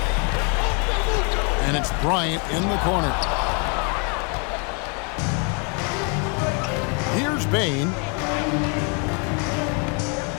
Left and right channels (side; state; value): right; quieter; 36.1 dB